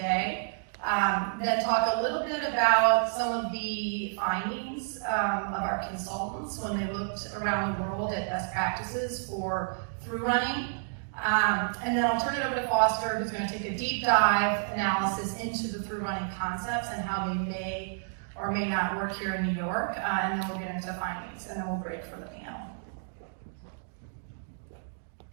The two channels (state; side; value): silent; left; digital silence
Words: then talk a little bit about some of the findings of our consultants when they looked around the world at best practices for through running. And then I'll turn it over to Foster, who's going to take a deep dive analysis into the through running concepts and how they may or may not work here in New York, and then we'll get into findings, and then we'll break for the panel.